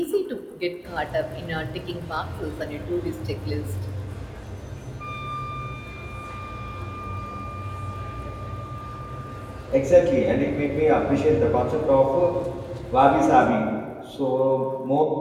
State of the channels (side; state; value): both; identical; correlation 1.00